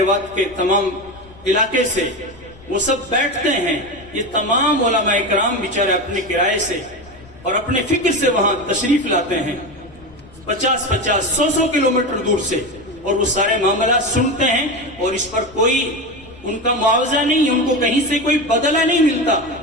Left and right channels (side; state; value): left; noise; rumble, 23 dB below the sound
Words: کے تمام علاقے سے وہ سب بیٹھتے ہیں۔ یہ تمام علماء کرام بیچارے اپنے کرائے سے اور اپنے فکر سے وہاں تشریف لاتے ہیں، 50، 100 کلومیٹر دور سے، اور وہ سارے معاملات سنتے ہیں اور اس پر کوئی ان کا معاوضہ نہیں، ان کو کہیں سے کوئی بدلہ نہیں ملتا،